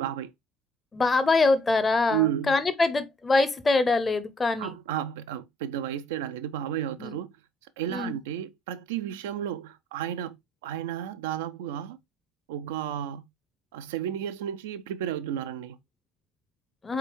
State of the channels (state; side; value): normal; both; correlation 0.59